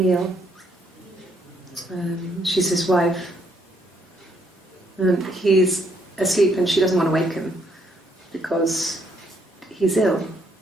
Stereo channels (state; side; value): normal; both; correlation 0.71